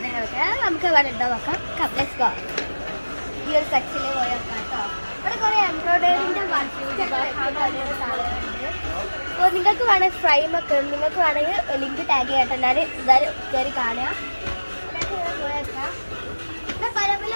നമുക്ക് വേണ്ടോ നോക്കാം. Let's go. ഈ ഒരു സെക്ഷനിൽ പോയി നോക്കാം കേട്ടോ. ഇവിടെ കുറേ എംബ്രോയിഡറിൻ്റെ സാധനങ്ങളുണ്ട്. അപ്പോൾ നിങ്ങൾക്ക് വേണമെങ്കിൽ ഫ്രെയിമൊക്കെ നിങ്ങൾക്ക് വേണമെങ്കിൽ ലിങ്ക് ടാഗ് ചെയ്യട്ടെ. ഞാൻ എന്തായാലും കയറി കാണുക. പോയി നോക്കാം. ഇവിടെ പല പല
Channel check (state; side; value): inverted; both; correlation -1.00